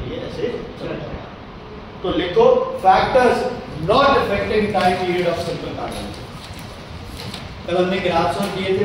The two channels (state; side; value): identical; both; correlation 1.00